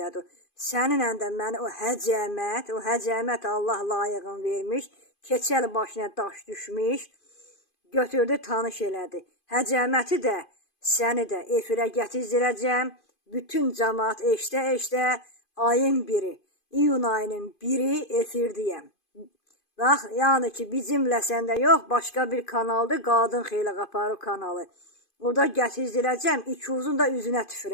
Səninlə də məni o həcəmət Allah layığın vermiş, keçəl başına daş düşmüş, götürdü, tanış elədi. Həcəməti də, səni də efirə gətizdirəcəm. Bütün cəmaat eşdə, ayın biri, iyun ayının biri efirdiyəm. Bax, yəni ki, bizimlə səndə yox, başqa bir kanaldır, Qadın Xeyli Qaparı kanalı. Orada gətizdirəcəm, ikizun da üzünə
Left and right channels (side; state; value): right; late; 2.5 ms